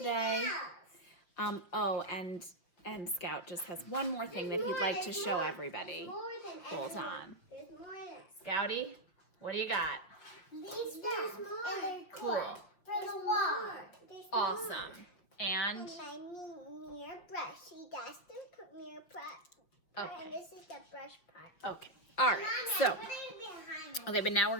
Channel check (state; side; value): late; right; 5.6 ms